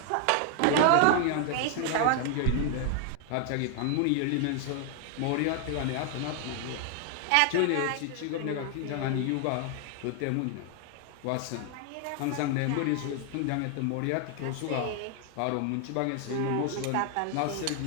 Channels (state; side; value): different; both; correlation 0.00